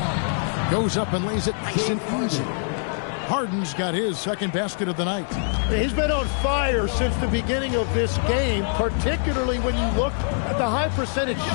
Goes up and lays it nice and easy. Harden's got his second basket of the night. He's been on fire since the beginning of this game, particularly when you look at the high percentage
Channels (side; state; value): right; silent; 62 dB below the other